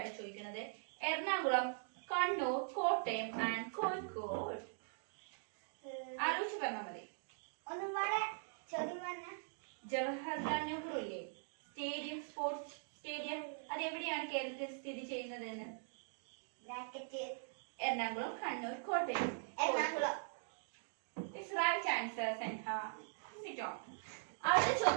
ചോദിക്കുന്നത്. എറണാകുളം, കണ്ണൂർ, കോട്ടയം ആൻഡ് കോഴിക്കോട്. ആലോചിച്ച് പറഞ്ഞാൽ മതി. ജവഹർലാൽ നെഹ്റു ഇല്ലേ സ്റ്റേഡിയം, സ്പോർട്സ് സ്റ്റേഡിയം, അത് എവിടെയാണ് കേരളത്തിൽ സ്ഥിതി ചെയ്യുന്നത് എന്ന്? Ernakulam, Kannur, Kottayam. Right answer Senha. Sit on. അടുത്ത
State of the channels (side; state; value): left; silent; digital silence